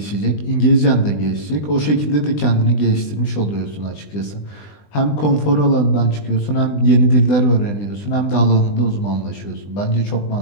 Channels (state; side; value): late; right; 20 ms